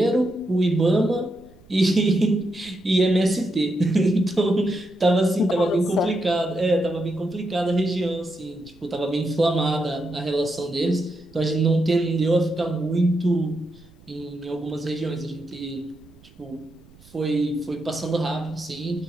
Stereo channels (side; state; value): right; noise; rumble, 26 dB below the sound